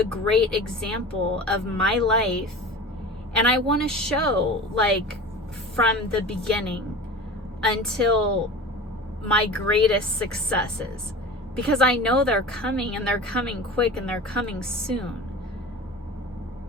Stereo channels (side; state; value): both; normal; correlation 0.35